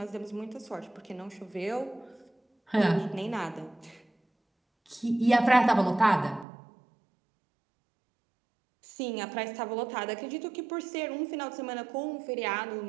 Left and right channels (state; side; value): drops out; left; at 6.5 s